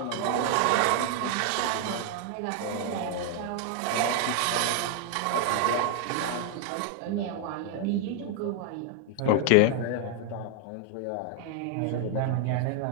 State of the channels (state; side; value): different; both; correlation 0.00